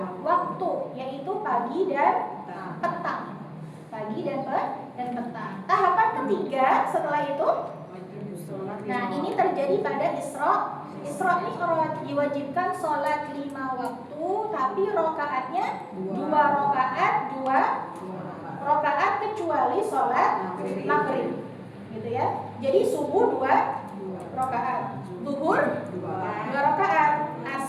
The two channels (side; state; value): both; identical; correlation 1.00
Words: waktu, yaitu pagi dan petang. Pagi dan petang. Tahapan ketiga setelah itu, nah ini terjadi pada Isra Mi'raj, diwajibkan sholat 5 waktu, tapi rokaatnya 2 rokaat kecuali sholat maghrib, gitu ya. Jadi subuh 2 rokaat, zuhur 2 rokaat,